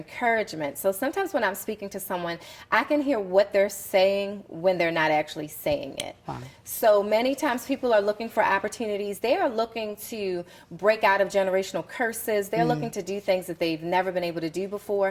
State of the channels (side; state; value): both; identical; correlation 1.00